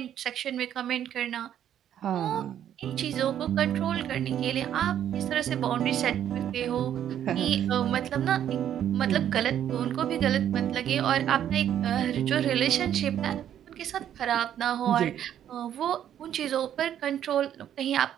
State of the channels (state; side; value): quieter; left; 10.3 dB